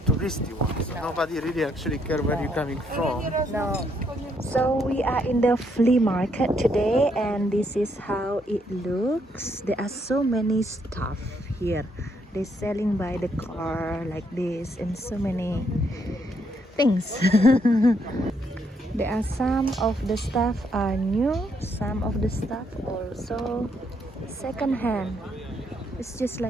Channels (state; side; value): normal; both; correlation 0.73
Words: touristy one, so nobody really actually care where you're coming from. No. So we are in the flea market today, and this is how it looks. There are so many stuff here. They're selling by the car like this, and so many things. There are some of the stuff are new, some of the stuff also second hand. It's just